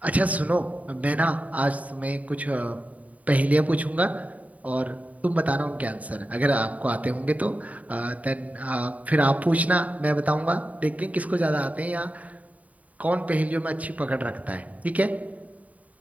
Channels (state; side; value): late; left; 0.070 ms